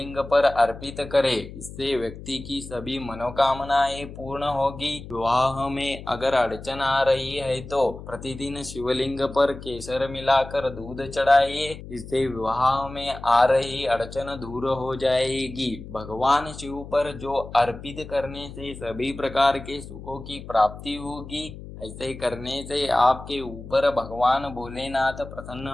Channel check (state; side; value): noise; left; hum, 13 dB below the sound